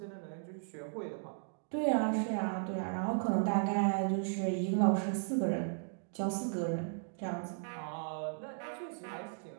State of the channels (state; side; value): silent; left; digital silence